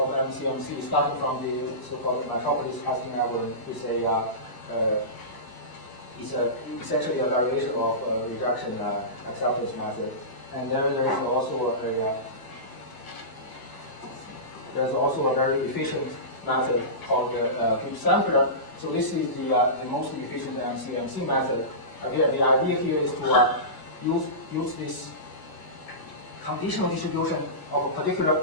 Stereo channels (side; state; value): right; late; 1.0 ms